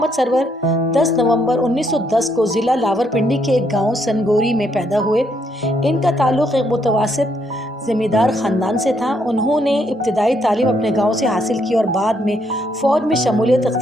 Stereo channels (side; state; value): both; normal; correlation 0.73